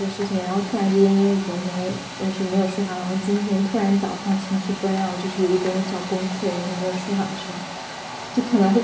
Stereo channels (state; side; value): identical; both; correlation 1.00